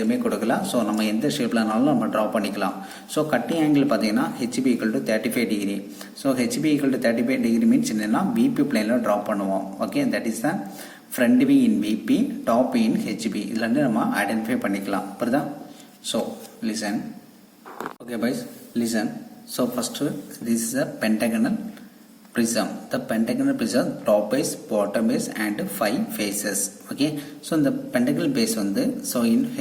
கொடுக்கல. ஸோ நம்ம எந்த ஷேப்லனாலும் நம்ம ட்ரா பண்ணிக்கலாம். ஸோ கட்டிங் ஆங்கிள் பார்த்தீங்கன்னா HP equal to 35 degree. So HP equal to 35 degree means என்னன்னா பிபி பிளேனில் ட்ரா பண்ணுவோம். Okay, that is the front view in PP, top view in HP. இதுல இருந்து நம்ம ஐடென்டிஃபை பண்ணிக்கலாம். புரியுதா? So listen. Okay boys, listen. So first this is a pentagonal prism. The pentagonal prism top base, bottom base and 5 faces. Okay, so இந்த pentagonal base வந்து so in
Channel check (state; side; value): identical; both; correlation 1.00